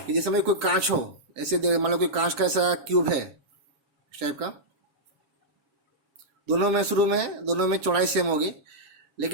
जैसे में कोई कांच हो, ऐसे मान लो कोई कांच का ऐसा क्यूब है इस टाइप का, दोनों में शुरू में दोनों में चौड़ाई सेम होगी,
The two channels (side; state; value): left; late; 7.2 ms